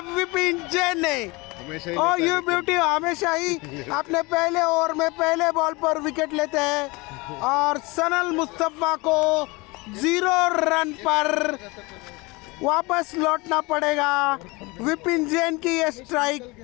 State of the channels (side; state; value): right; quieter; 25.0 dB